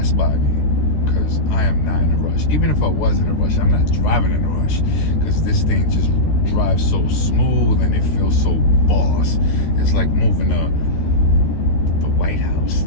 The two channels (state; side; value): late; right; 13 ms